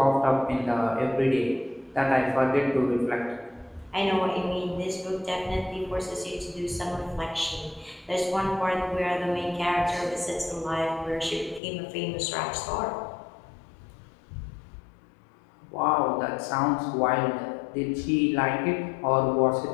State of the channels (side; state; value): right; drops out; at 11.6 s